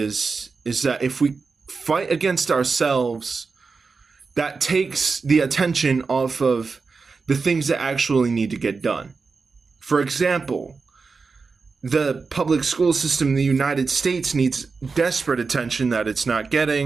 that if we fight against ourselves, that takes the attention off of the things that actually need to get done. For example, the public school system in the United States needs desperate attention that it's not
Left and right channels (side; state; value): left; quieter; 4.6 dB